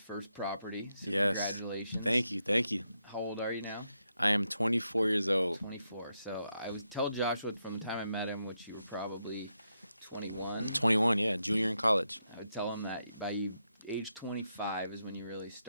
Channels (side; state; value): both; inverted; correlation -0.83